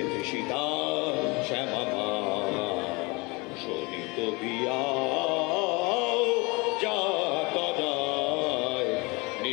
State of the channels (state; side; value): quieter; right; 26.6 dB